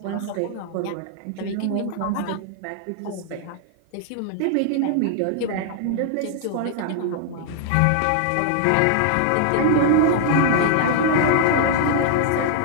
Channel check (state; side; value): different; both; correlation -0.01